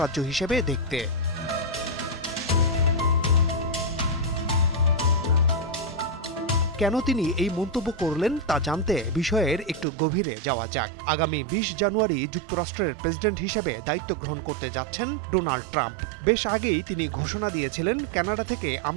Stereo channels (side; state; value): left; drops out; at 9.9 s